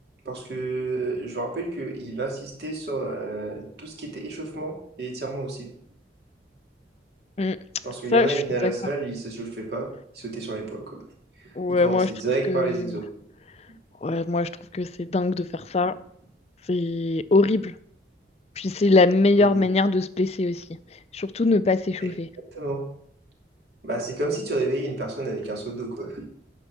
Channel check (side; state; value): both; normal; correlation 0.50